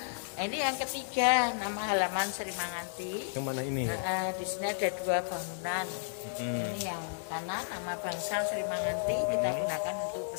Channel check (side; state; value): right; silent; digital silence